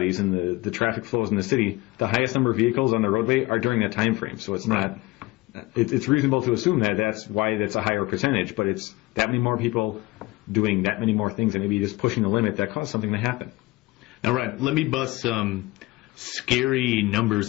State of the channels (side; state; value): right; quieter; 20.7 dB